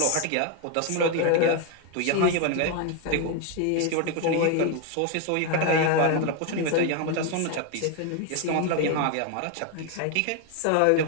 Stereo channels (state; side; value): different; both; correlation 0.01